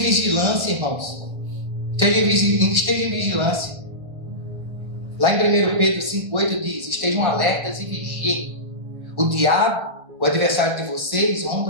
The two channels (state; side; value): late; left; 1.4 ms